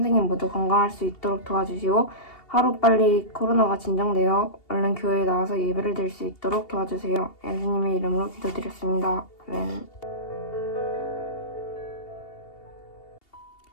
모두 건강할 수 있도록 도와주시고 하루빨리 코로나가 진정되어 얼른 교회에 나와서 예배를 드릴 수 있도록 도와주세요. 예수님의 이름으로 기도드렸습니다. 아멘.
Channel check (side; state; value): right; late; 2.8 ms